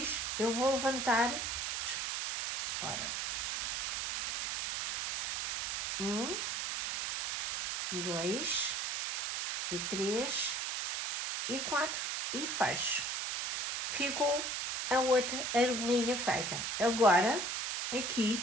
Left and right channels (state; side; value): noise; right; hiss, 2 dB below the sound